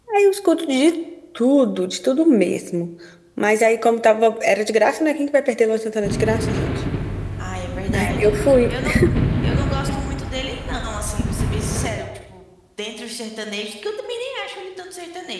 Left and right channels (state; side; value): identical; both; correlation 1.00